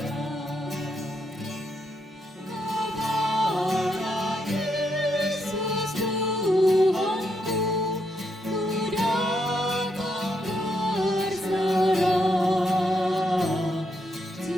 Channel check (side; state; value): both; normal; correlation 0.79